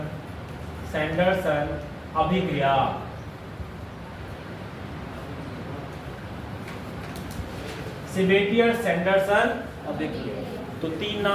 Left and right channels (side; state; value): both; identical; correlation 1.00